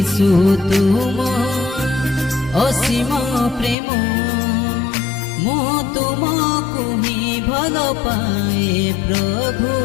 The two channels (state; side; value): drops out; right; at 3.8 s